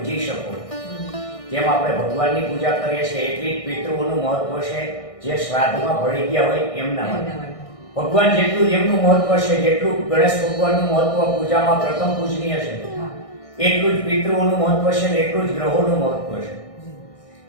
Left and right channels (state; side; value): late; right; 1.6 ms